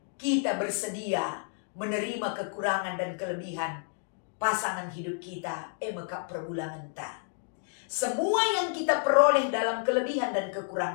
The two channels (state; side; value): silent; right; 58 dB below the other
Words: kita bersedia menerima kekurangan dan kelebihan pasangan hidup kita. Mekap perbulangan ta. Semua yang kita peroleh dalam kelebihan dan